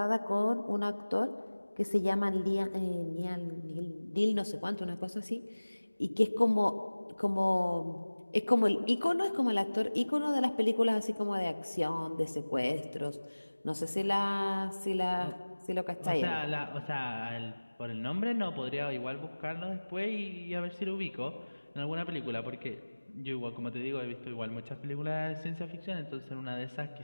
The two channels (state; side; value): inverted; both; correlation -1.00